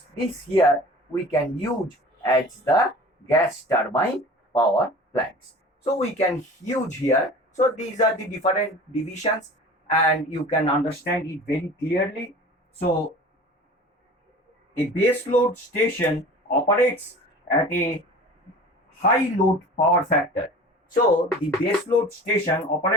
This here we can use as the gas turbine power plants. So we can use here. So these are the different divisions and you can understand it very clearly. So a base load station operates at a high load power factor. So the base load station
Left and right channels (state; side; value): normal; both; correlation 0.41